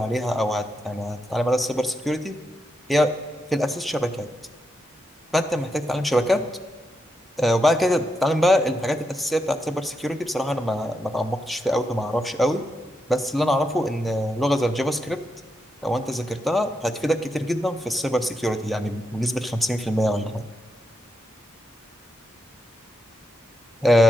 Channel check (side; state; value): both; normal; correlation 0.84